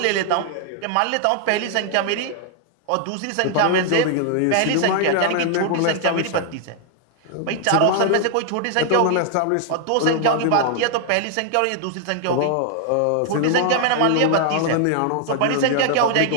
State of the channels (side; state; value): both; different; correlation 0.00